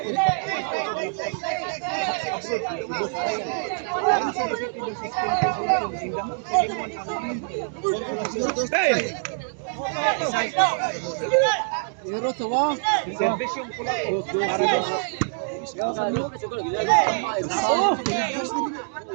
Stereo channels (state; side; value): silent; left; digital silence